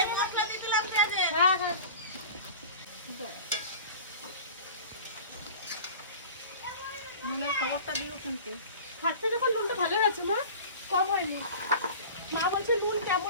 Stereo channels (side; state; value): both; inverted; correlation -0.39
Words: হ্যাঁ হ্যাঁ, নুনের খবরটা দিও কিন্তু। খাচ্ছে যখন নুনটা ভালো হয়েছে মা, কম হয়নি। মা বলছে নুন